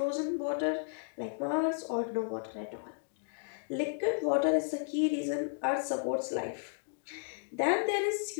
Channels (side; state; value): right; silent; digital silence